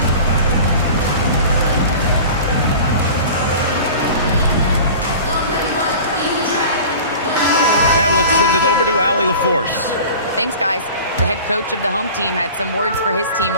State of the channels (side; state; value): both; inverted; correlation -0.39